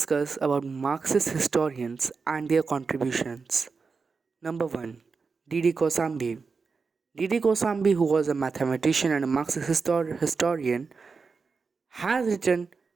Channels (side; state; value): left; quieter; 4.8 dB